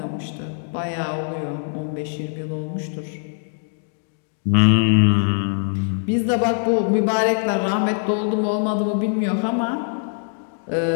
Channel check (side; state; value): right; silent; digital silence